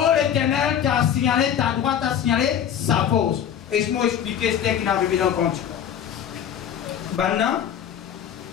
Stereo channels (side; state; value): right; quieter; 9.2 dB